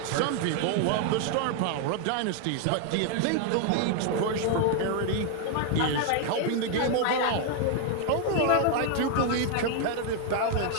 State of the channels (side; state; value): both; different; correlation 0.00